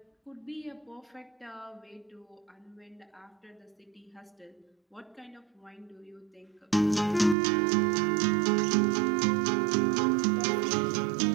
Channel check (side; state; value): left; drops out; at 7.4 s